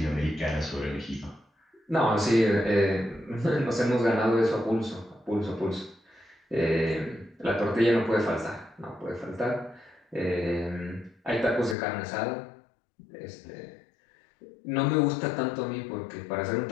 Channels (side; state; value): right; drops out; at 11.8 s